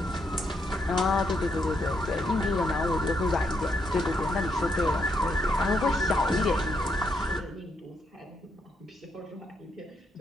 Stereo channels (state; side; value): normal; both; correlation 0.77